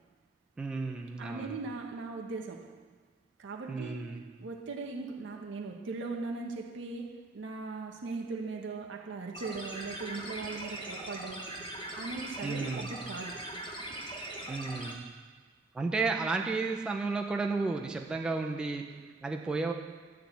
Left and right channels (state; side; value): quieter; left; 3.1 dB